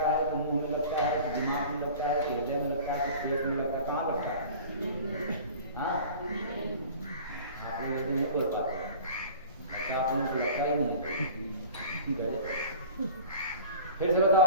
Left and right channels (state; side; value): inverted; both; correlation -0.41